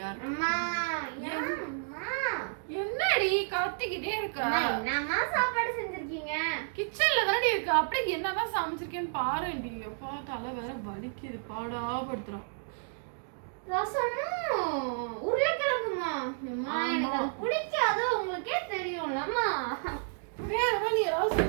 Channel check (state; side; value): silent; left; digital silence